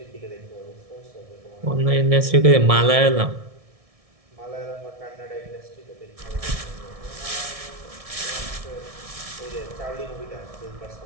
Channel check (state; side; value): late; left; 1.6 ms